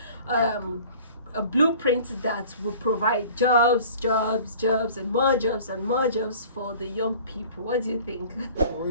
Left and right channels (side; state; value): both; inverted; correlation -0.46